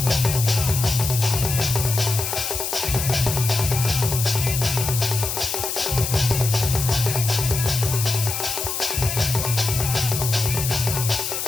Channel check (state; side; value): noise; left; hiss, 3 dB below the sound